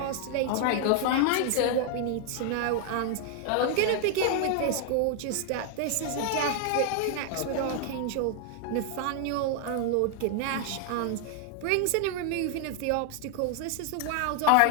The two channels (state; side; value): different; both; correlation 0.00